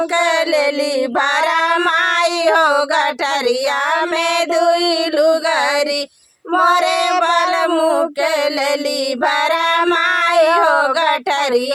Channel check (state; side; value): identical; both; correlation 1.00